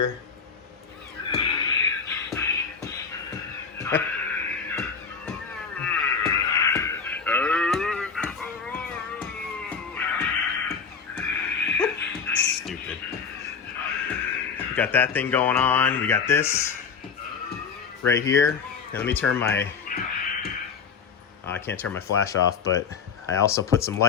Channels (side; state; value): right; quieter; 6.0 dB